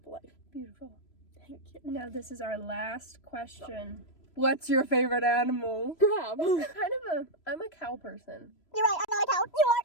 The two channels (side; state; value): right; late; 3.0 ms